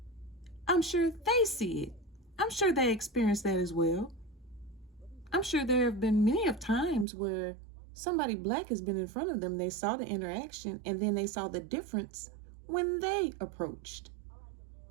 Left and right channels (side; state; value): left; drops out; at 7.1 s